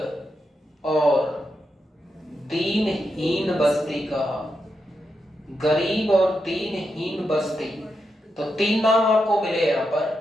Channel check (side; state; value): both; normal; correlation 0.86